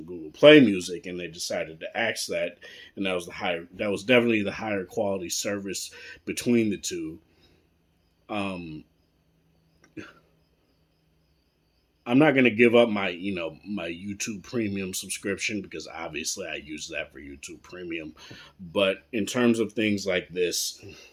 Google Play Music, and they decided to axe that, and that was definitely the higher quality service between the two. I'm not going to give up my YouTube Premium subscription, because obviously I use that for YouTube Premium. But in terms of things like this,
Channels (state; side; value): identical; both; correlation 1.00